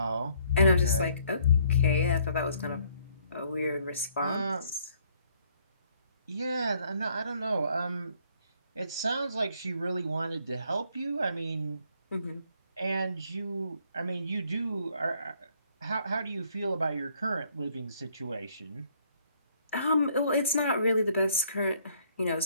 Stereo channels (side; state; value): both; inverted; correlation -0.65